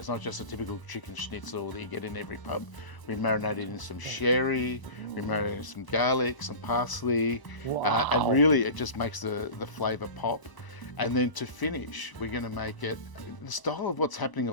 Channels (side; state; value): right; late; 1.0 ms